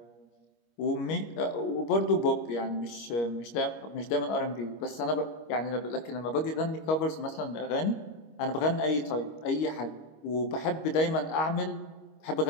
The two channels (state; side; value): late; right; 25 ms